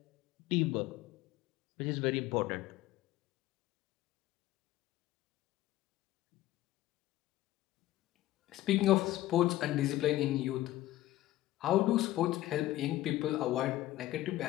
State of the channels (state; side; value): quieter; right; 15.4 dB